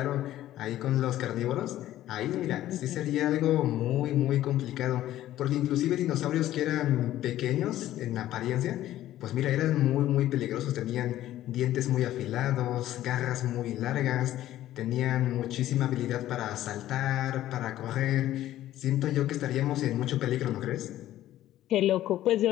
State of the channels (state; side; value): quieter; right; 13.6 dB